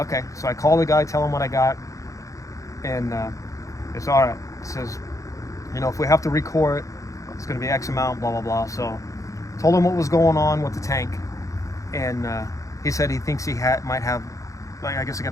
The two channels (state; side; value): late; right; 0.16 ms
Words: so I call the guy, tell him what I got, and it's all right. He says, "You know, if we have to recore it, it's going to be X amount, blah blah blah." So told him what was going on with the tank, and he said he thinks he might have, like, I guess I